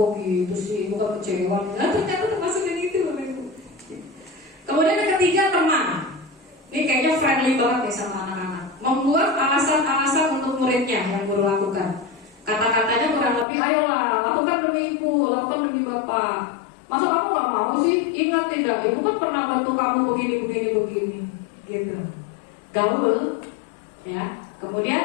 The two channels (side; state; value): right; drops out; at 13.5 s